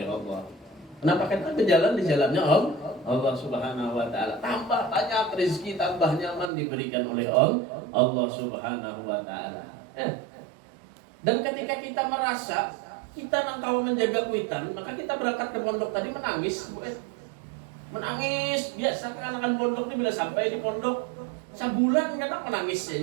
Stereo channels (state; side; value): drops out; left; at 6.5 s